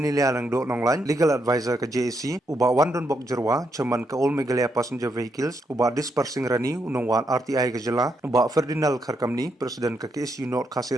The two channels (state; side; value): normal; both; correlation 0.79